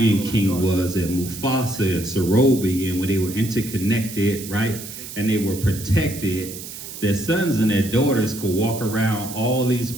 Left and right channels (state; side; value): noise; right; hiss, 11 dB below the sound